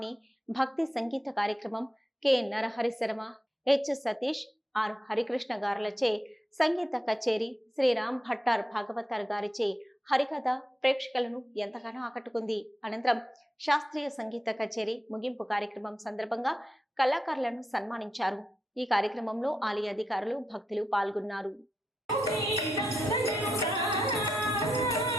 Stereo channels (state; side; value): normal; both; correlation 0.85